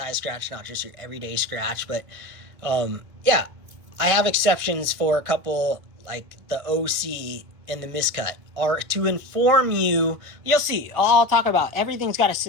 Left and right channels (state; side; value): late; left; 1.6 ms